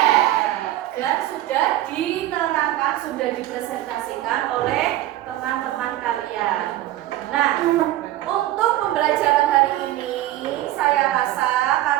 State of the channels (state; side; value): quieter; left; 14.7 dB